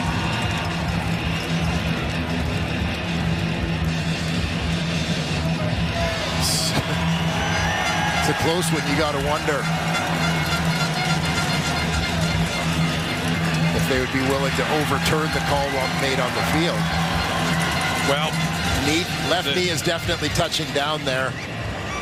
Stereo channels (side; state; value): both; identical; correlation 1.00